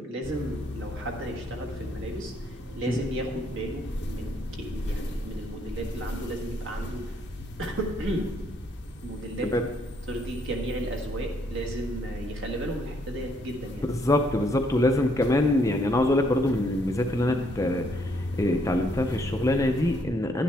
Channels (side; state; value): both; normal; correlation 0.70